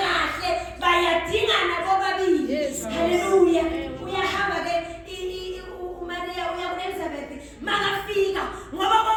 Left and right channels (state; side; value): identical; both; correlation 1.00